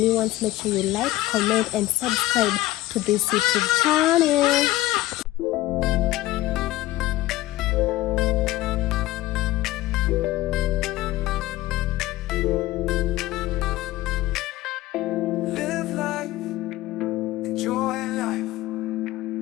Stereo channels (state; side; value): quieter; right; 16.6 dB